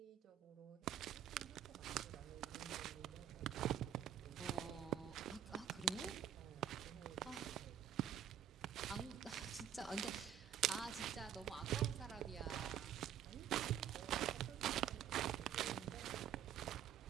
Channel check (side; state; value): left; quieter; 9.8 dB